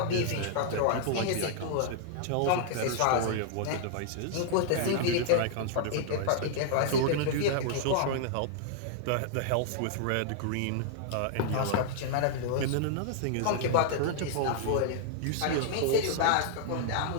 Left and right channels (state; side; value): different; both; correlation -0.01